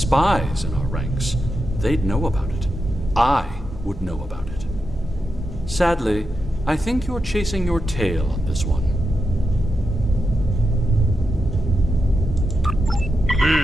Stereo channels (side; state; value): both; normal; correlation 0.87